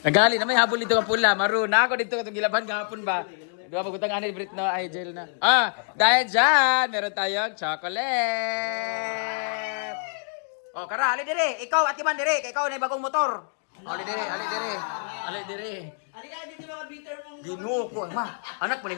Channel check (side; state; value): right; silent; digital silence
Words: Nagali na may habol dito nga pula. Maroon na ako dito katong gilaban kahapon ba. Di ba pagutang anil Brit no? Ay, gel na. Dahil dyan, meron tayong chocolate. Oh, kara, ali dire. Ikaw, atiman dire. Kaya ikaw na yung bagong motor. Ali dire, ali dire. Ali dire. Halika dito mga bitter mong... Ginoo ko, ma. Anak mo